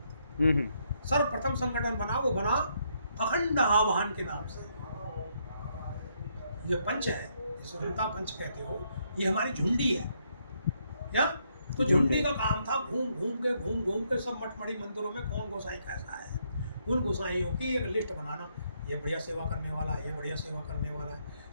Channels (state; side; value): inverted; both; correlation -0.75